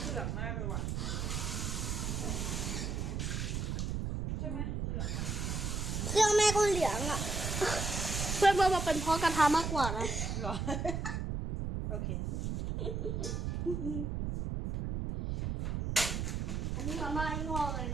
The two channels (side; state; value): right; noise; rumble, 1 dB below the sound